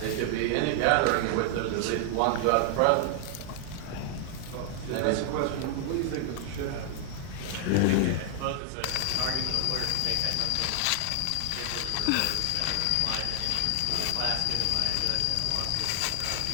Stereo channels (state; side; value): different; both; correlation 0.00